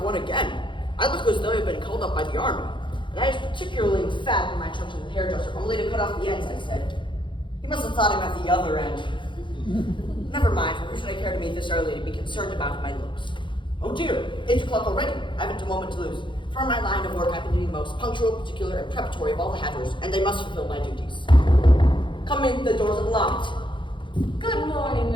one again. I look as though I've been called up by the army. And I was particularly emphatic in my trip to the hairdresser, only to cut off the ends, I said. He must have thought I meant the other end. Never mind, for who should I care to meet this early to be concerned about my looks? Oh dear, 8 o'clock already. I haven't a moment to lose. For in my line of work, I happen to be the most punctual, particular, and preparatory of all the hatters, and they must fulfill my duties. Come in, the doors are locked. Good morning,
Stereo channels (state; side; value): late; right; 0.23 ms